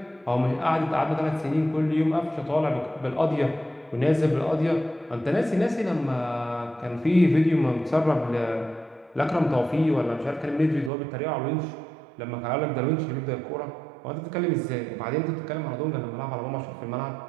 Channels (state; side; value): drops out; left; at 10.9 s